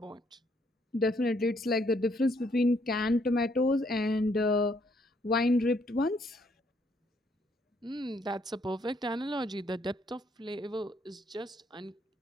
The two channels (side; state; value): both; normal; correlation 0.70